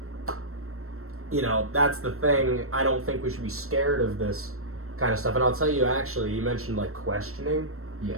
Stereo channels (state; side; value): late; left; 0.63 ms